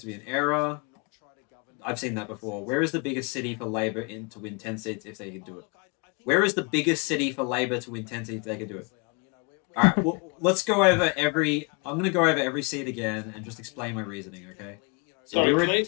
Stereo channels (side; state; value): right; quieter; 32.8 dB